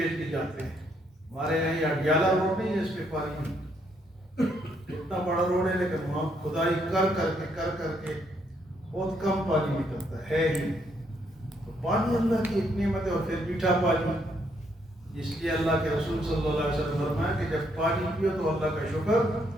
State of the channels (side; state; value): both; normal; correlation 0.72